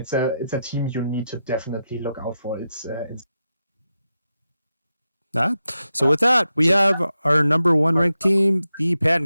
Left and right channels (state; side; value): inverted; both; correlation -0.89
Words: a team you need to definitely look out for. It's Nah. So with that, we have our number 1 ranked team, the